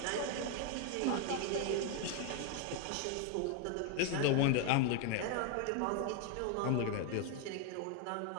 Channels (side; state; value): both; different; correlation 0.01